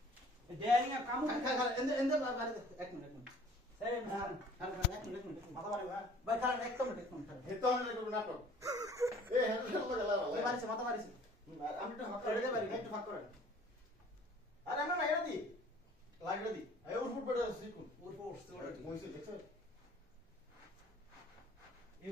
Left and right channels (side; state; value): both; normal; correlation 0.52